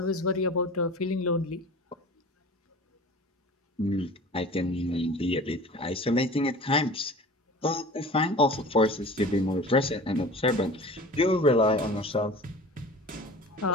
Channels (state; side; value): normal; both; correlation 0.39